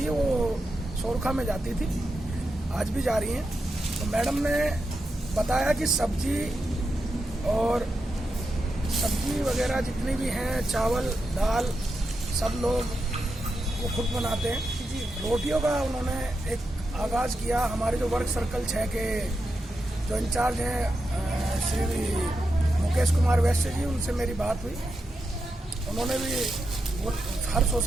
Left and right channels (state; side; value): normal; both; correlation 0.87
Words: है वो सोरखा में जाती थी, आज भी जा रही हैं। तो मैडम ने बताया कि सब्जी वगैरह जितनी भी हैं, चावल दाल, सब लोग वो खुद बनाते हैं। रोटियों का उन्होंने एक आगाज़ किया। हमारे जो वर्क सर्कल 6 के जो इंचार्ज हैं श्री मुकेश कुमार वैश्य जी, उनसे मेरी बात हुई। उन्होंने भी वो हर